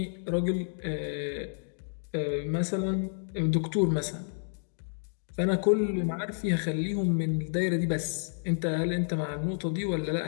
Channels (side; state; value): right; silent; digital silence